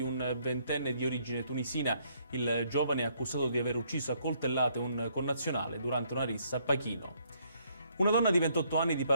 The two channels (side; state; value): both; inverted; correlation -0.69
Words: un 20enne di origine tunisina. Il giovane è accusato di aver ucciso a coltellate un connazionale durante una rissa a Pachino. Una donna di 28 anni di